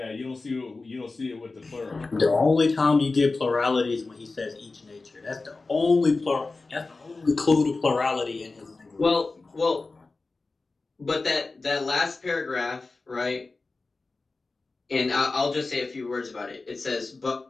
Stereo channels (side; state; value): right; quieter; 3.7 dB